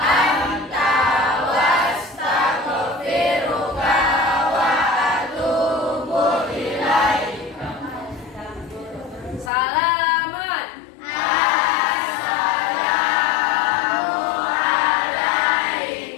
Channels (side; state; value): right; drops out; at 9.5 s